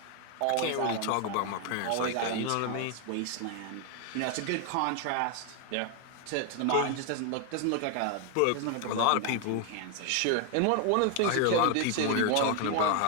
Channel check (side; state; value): both; different; correlation 0.00